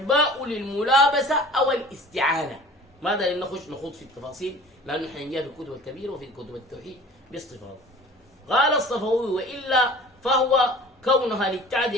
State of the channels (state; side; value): normal; both; correlation 0.44